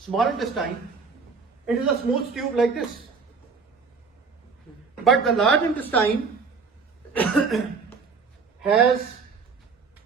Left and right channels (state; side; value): quieter; left; 5.1 dB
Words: intestine, it is a smooth tube like this. But the large intestine has